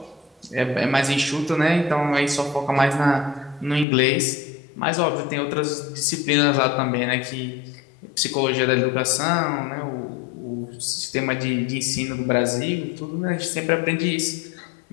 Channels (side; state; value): right; drops out; at 3.9 s